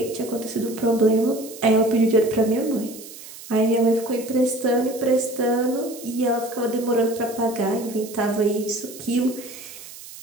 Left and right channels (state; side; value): noise; right; hiss, 16 dB below the sound